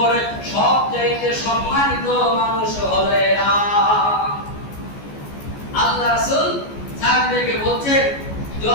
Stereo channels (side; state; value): right; late; 14 ms